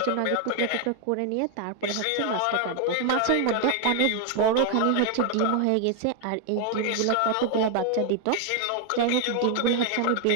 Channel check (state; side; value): different; both; correlation 0.00